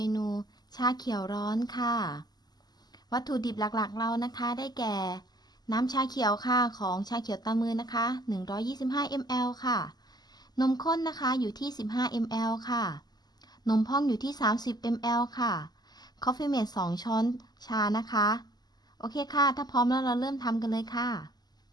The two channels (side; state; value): right; late; 0.20 ms